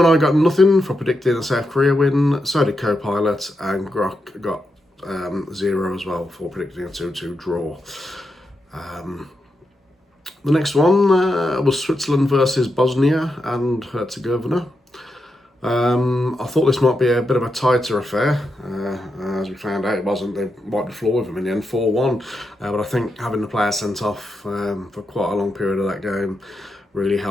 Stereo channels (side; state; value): both; normal; correlation 0.86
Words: got nothing for predicting a South Korea win, so did Copilot, and Grok got 0 as well for predicting a 2-2 draw. The next one was Switzerland versus Bosnia and Herzegovina. I thought this might be a bit of a tighter affair. As we found out, it wasn't. They wiped the floor with them in the end, 4-1. But I think having the player sent off for quite a long period of that game really